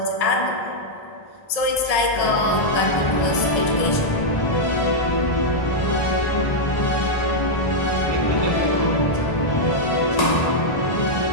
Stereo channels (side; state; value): right; late; 1.7 ms